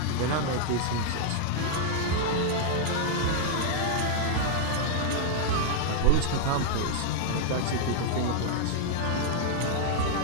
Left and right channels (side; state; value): both; different; correlation 0.00